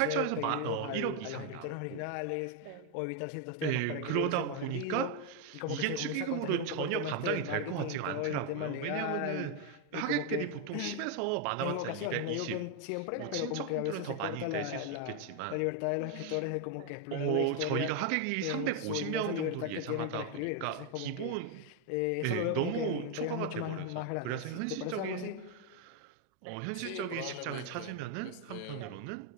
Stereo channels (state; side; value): different; both; correlation 0.01